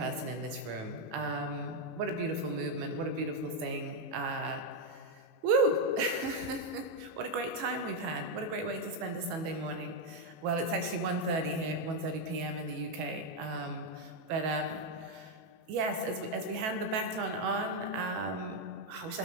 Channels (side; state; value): left; late; 18 ms